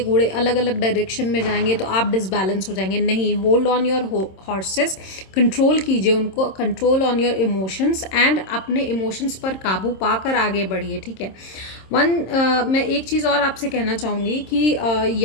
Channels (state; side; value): late; right; 26 ms